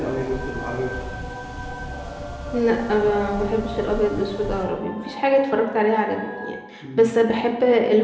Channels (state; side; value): identical; both; correlation 1.00